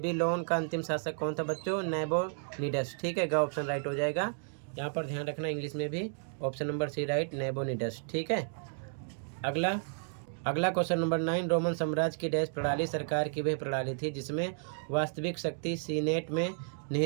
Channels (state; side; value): silent; left; 56 dB below the other